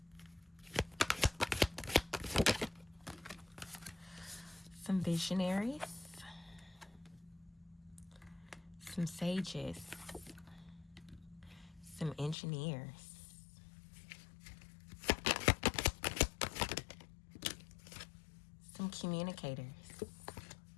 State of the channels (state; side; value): drops out; right; at 12.4 s